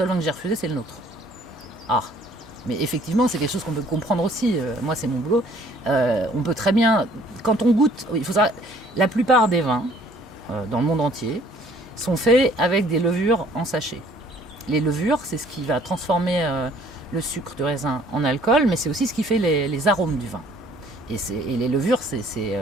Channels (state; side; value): normal; both; correlation 0.57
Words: vin que j'ai refusé, c'est le nôtre. Ah, mais effectivement, c'est quelque chose qu'on peut comprendre aussi. Moi, c'est mon boulot. On peut très bien, quand on goûte, il faut savoir, la plupart des vins dans le monde entier, sont faits avec des levures en sachet. Les levures, c'est ce qui va transformer le sucre du raisin en alcool, mais c'est aussi ce qui fait les arômes du vin. Et les levures,